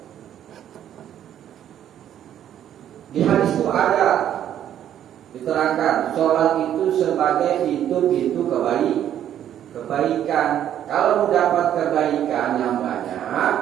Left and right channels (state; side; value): quieter; left; 10.6 dB